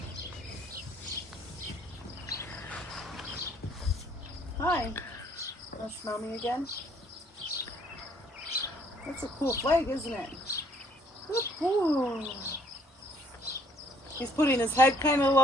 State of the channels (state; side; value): normal; both; correlation 0.63